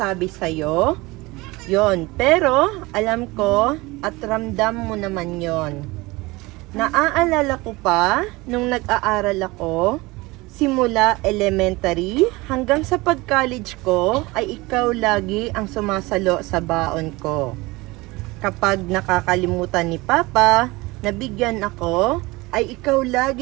sa'yo. Yon, pero alam ko at ramdam mo naman yon. Naaalala ko pa nung nag-aaral ako, simula elementary hanggang sa pag-college ko ay ikaw lagi ang sumasalo sa baon ko. Kapag nakakalimutan ni Papa, nabigyan ako, ay ikaw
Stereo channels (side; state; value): left; quieter; 22.2 dB